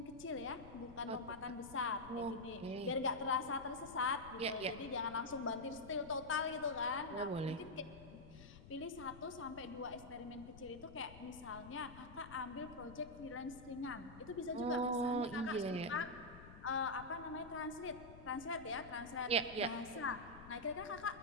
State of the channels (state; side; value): noise; left; rumble, 16 dB below the sound